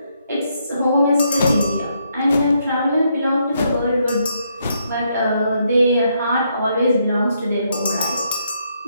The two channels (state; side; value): inverted; both; correlation -0.75